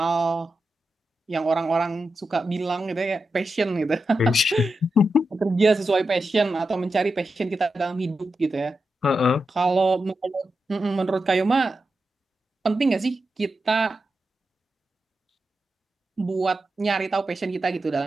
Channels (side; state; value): both; normal; correlation 0.89